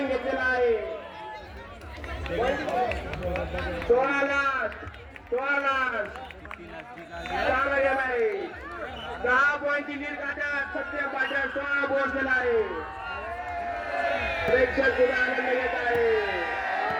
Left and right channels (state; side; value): identical; both; correlation 1.00